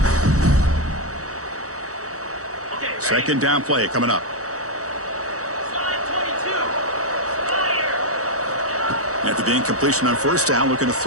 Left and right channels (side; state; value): left; late; 0.65 ms